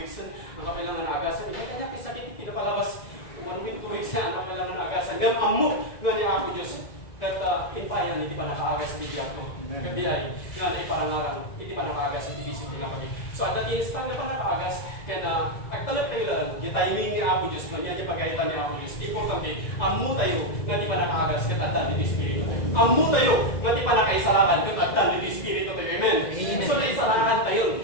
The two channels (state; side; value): late; right; 2.0 ms